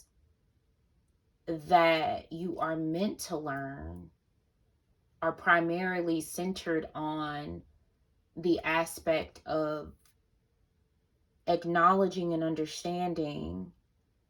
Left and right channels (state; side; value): identical; both; correlation 1.00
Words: that you are meant to learn are primarily centered on the aspect of acknowledging and understanding